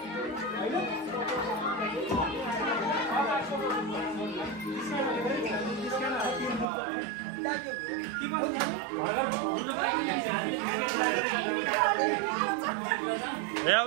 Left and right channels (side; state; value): left; drops out; at 6.7 s